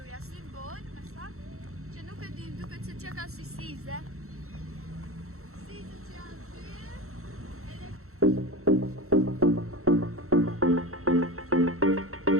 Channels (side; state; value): left; late; 0.63 ms